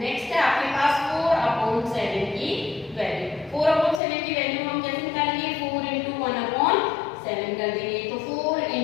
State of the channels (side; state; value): right; drops out; at 4.0 s